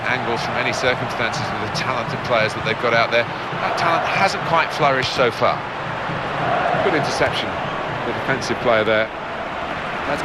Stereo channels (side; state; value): both; identical; correlation 1.00